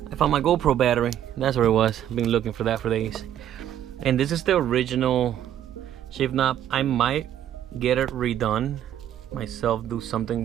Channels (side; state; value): left; quieter; 10.9 dB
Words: I found my GoPro battery. That's where it was. I've been looking for that for days. And this is the original shift knob. I might get it redone myself, do something